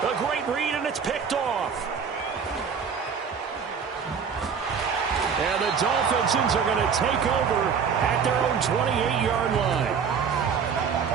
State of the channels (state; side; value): quieter; left; 6.4 dB